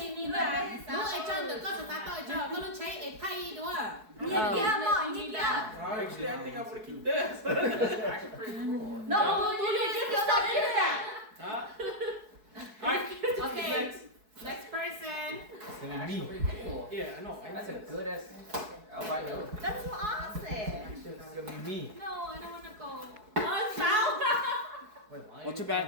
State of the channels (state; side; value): late; left; 4.7 ms